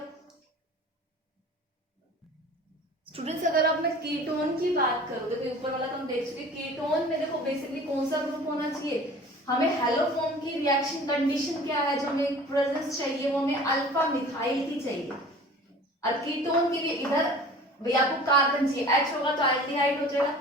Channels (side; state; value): both; normal; correlation 0.44